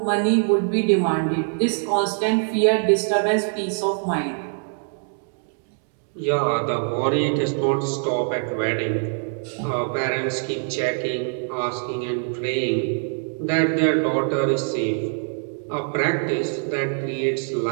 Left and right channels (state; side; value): silent; left; 63 dB below the other